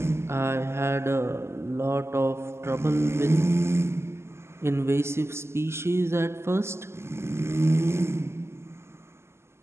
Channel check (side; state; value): left; late; 0.12 ms